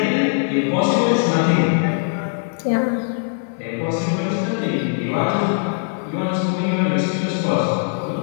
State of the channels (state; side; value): silent; right; 65 dB below the other